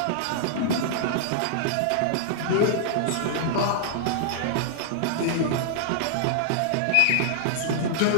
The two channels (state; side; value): different; both; correlation -0.01